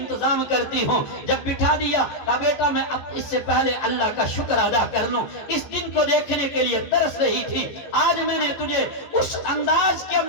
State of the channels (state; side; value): late; right; 15 ms